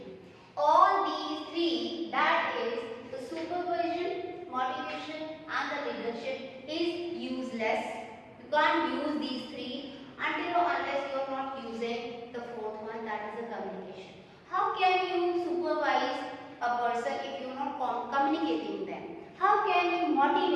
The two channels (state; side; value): identical; both; correlation 1.00